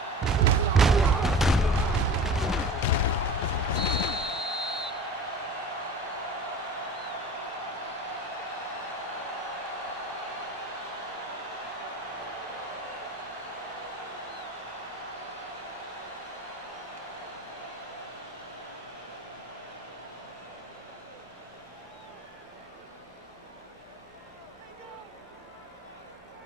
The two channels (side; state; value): both; normal; correlation 0.37